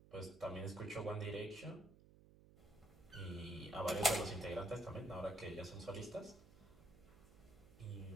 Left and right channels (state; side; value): noise; right; hum, 22 dB below the sound